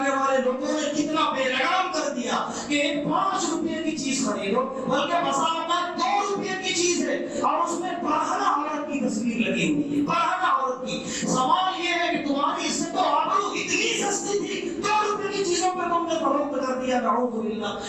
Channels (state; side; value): identical; both; correlation 1.00